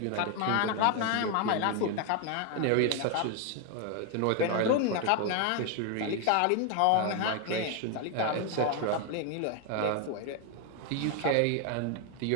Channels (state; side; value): different; both; correlation 0.01